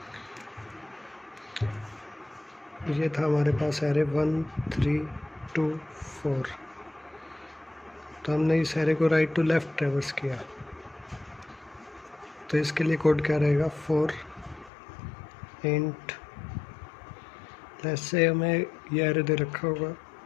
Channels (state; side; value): drops out; right; at 14.7 s